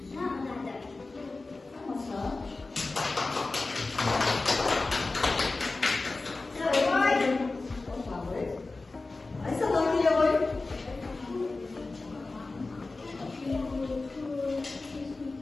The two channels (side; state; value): right; quieter; 3.5 dB